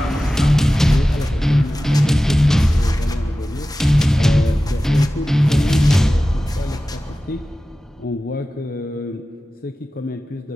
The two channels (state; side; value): normal; both; correlation 0.96